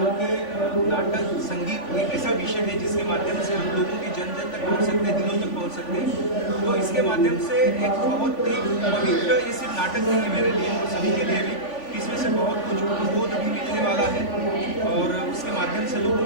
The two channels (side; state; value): right; late; 3.5 ms